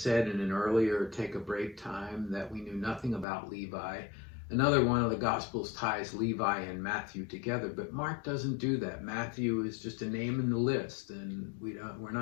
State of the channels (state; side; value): drops out; right; at 3.2 s